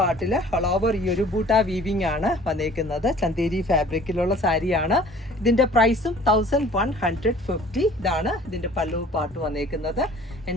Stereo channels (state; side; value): normal; both; correlation 0.50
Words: ഓൾ ഓവർ ഈ ഒരു ബൂട്ട വീവിങ് ആണ് വന്നേക്കുന്നത്. ചന്തേരി ഫാബ്രിക്കിലുള്ള സാരിയാണ്. ഇതിൻ്റെ പ്രൈസും 1150. ഇതാണ് ഇതിൻ്റെ പല്ലു പാർട്ട് വന്നേക്കുന്നത്.